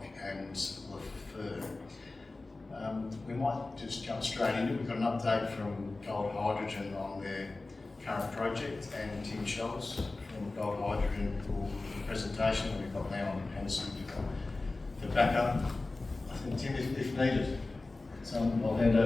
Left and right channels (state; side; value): quieter; right; 3.3 dB